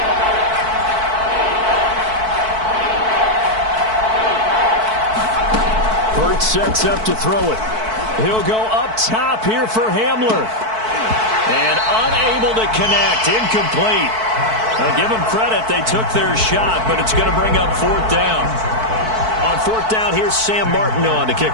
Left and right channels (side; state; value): left; late; 4.6 ms